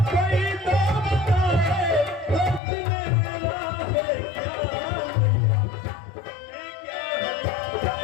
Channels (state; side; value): drops out; right; at 2.6 s